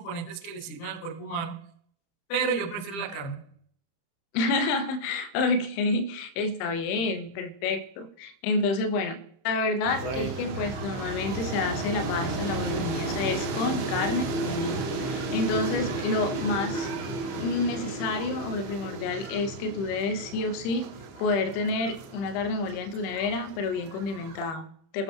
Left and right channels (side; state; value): right; late; 30 ms